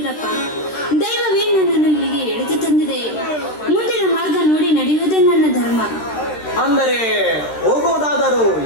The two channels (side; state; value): right; late; 13 ms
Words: ದೈವವೇ ನನ್ನನ್ನು ಇಲ್ಲಿಗೆ ಎಳೆದು ತಂದಿದೆ. ಮುಂದಿನ ಮಾರ್ಗ ನೋಡಿ ನಡೆಯುವುದೇ ನನ್ನ ಧರ್ಮ. ಅಂದರೆ ಹೋಗುವುದಾದರೂ